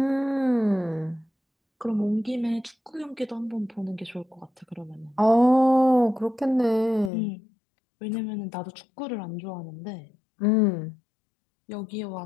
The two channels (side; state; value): right; drops out; at 7.1 s